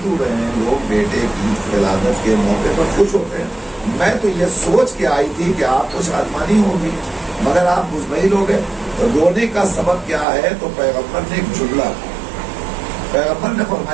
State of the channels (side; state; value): left; drops out; at 10.2 s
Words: کیوں رہے ہیں؟ لوگ بیٹے کی ولادت کے موقع پر خوش ہوتے ہیں۔ میں تو یہ سوچ کے آئی تھی کہ آپ کو شادمانی ہوگی، مگر آپ مطمئن ہو گئے۔ رونے کا سبب کیا ہے؟ تو پیغمبر نے ایک جملہ، پیغمبر نے